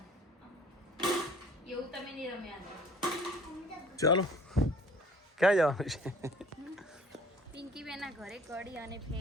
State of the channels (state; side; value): normal; both; correlation 0.52